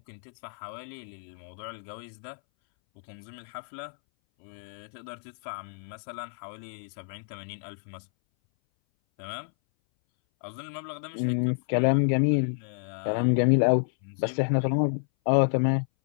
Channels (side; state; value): right; silent; 58 dB below the other